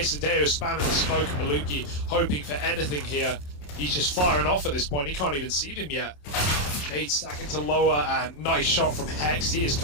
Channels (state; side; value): late; right; 28 ms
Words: spamming the smoke, and Maluki hoping for anything here. He's just firing off at this point. He can't even see them yet. Nade stacking to lower, and nice shot from Hex. He has